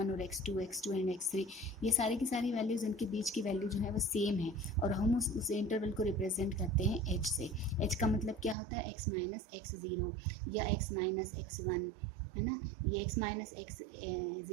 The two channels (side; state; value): left; drops out; at 8.6 s